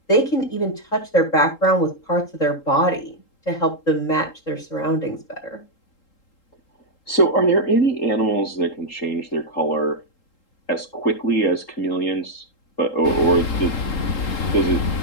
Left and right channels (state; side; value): late; right; 3.8 ms